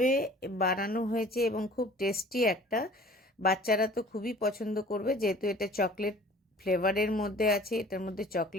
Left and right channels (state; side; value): normal; both; correlation 0.48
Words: বানানো হয়েছে এবং খুব টেস্টি একটা, বাচ্চারা তো খুবই পছন্দ করবে, যেহেতু এটা চকলেট ফ্লেভারের মধ্যে আছে, এটার মধ্যে